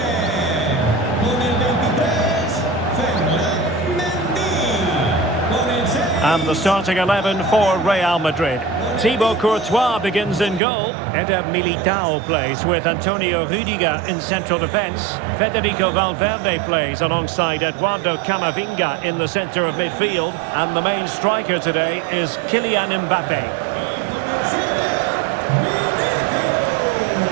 And the starting 11 for Real Madrid. Thibaut Courtois begins in goal. Eder Militao plays with Antonio Rüdiger in central defence. Federico Valverde plays alongside Eduardo Camavinga in the centre of midfield. And the main striker today is Kylian Mbappe.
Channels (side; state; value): left; drops out; at 10.6 s